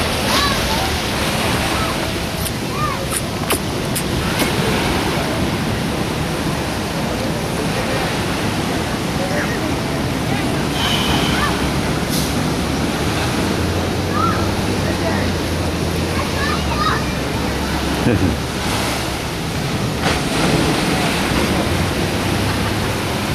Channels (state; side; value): identical; both; correlation 1.00